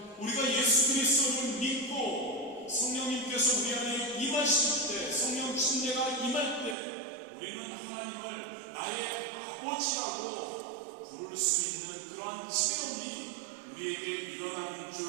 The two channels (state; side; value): drops out; left; at 6.8 s